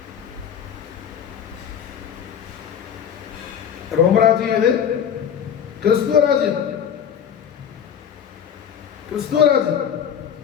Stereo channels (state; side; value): quieter; right; 8.3 dB